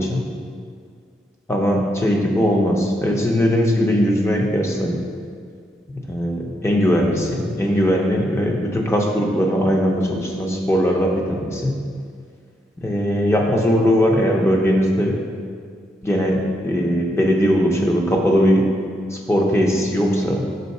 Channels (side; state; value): both; normal; correlation 0.80